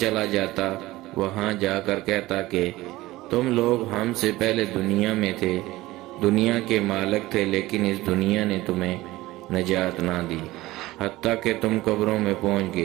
جاتا، وہاں جا کر کہتا کہ تم لوگ ہم سے پہلے دنیا میں تھے، دنیا کے مالک تھے، لیکن اس دنیا نے تمہیں نجات نہ دی حتیٰ کہ تم قبروں میں پہنچ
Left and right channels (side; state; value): left; quieter; 18.2 dB